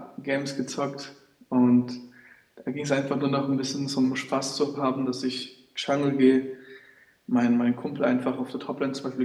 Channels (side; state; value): both; identical; correlation 1.00